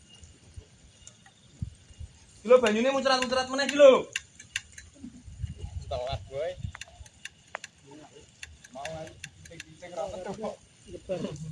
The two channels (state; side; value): identical; both; correlation 1.00